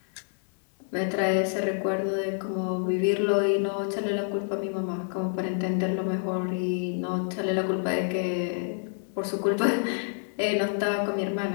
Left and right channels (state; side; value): silent; right; digital silence